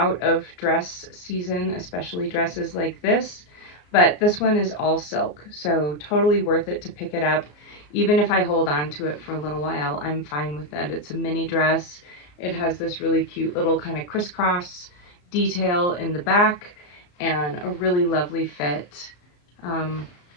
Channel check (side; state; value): right; late; 34 ms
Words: of dress season, especially dresses like this, but this one is all silk, so totally worth it to pick it up. Even if I hold on to it for a little while, I'm fine with it. It's a mini dress. It has this really cute little kind of crisscross detail in the back and a really lovely fit.